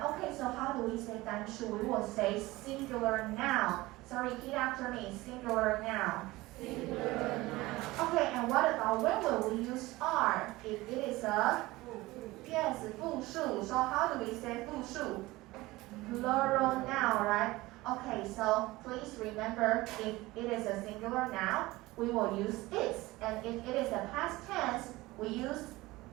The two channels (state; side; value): quieter; left; 19.7 dB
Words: Okay, so how do we say 单数? We will say singular noun. So repeat after me, singular noun. Singular noun. Okay, and what about when will we use are? If it is a, yes, 复数. So how do we say 复数? Plural noun, right? Okay, so please remember if it is a singular noun, we will use is. And if it is a past tense, we use